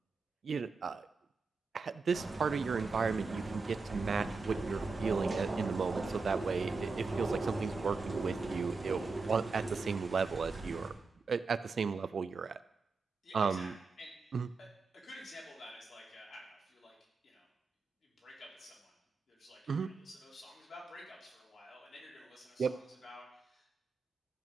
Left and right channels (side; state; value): left; quieter; 4.4 dB